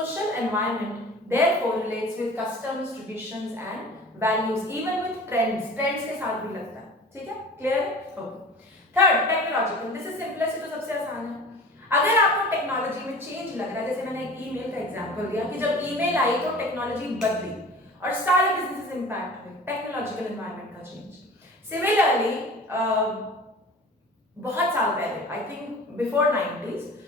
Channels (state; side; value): normal; both; correlation 0.40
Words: environment therefore relates with customs, traditions and values, even with trends के साथ भी लगता है। ठीक है, क्लियर है? Okay. Third, technological. This is simplest, तो सबसे आसान है। अगर आपको टेक्नोलॉजी में चेंज लग रहा है, जैसे मैंने एक ईमेल का एग्जांपल दिया कि जब ईमेल आई तो टेक्नोलॉजी बदली और सारे बिजनेसेस इंपैक्ट हुए, टेक्नोलॉजिकल एनवायरनमेंट का चेंज। सिमिलरली बहुत साल पहले, आई थिंक बिफोर 90s,